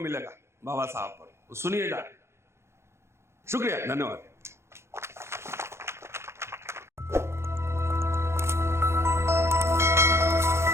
बाबा साहब पर, सुनिए जाके। शुक्रिया, धन्यवाद।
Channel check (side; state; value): left; late; 0.13 ms